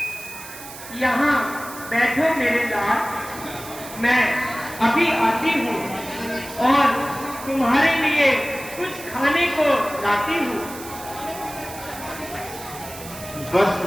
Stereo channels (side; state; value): right; noise; hiss, 14 dB below the sound